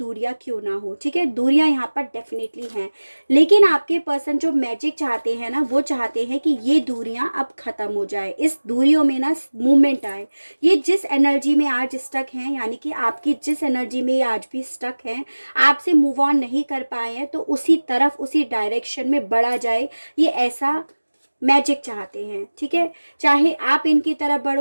क्यों ना हो। ठीक है, दूरियां यहाँ पर डेफिनेटली हैं, लेकिन आपके पर्सन जो मैजिक चाहते हैं ना, वो चाहते हैं कि ये दूरियां अब खत्म हो जाए, इस दूरियों में ना मूवमेंट आए। ये जिस एनर्जी में आज स्टक हैं, यानी कि आपकी जिस एनर्जी में ये आज भी स्टक हैं, आपसे मूव ऑन नहीं कर पाए हैं, तो उसी तरफ, उसी डायरेक्शन में बढ़ा जाए, ये ऐसा मैजिक चाहते हैं। ठीक है, चाहे आप इनकी तरफ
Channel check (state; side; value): inverted; both; correlation -1.00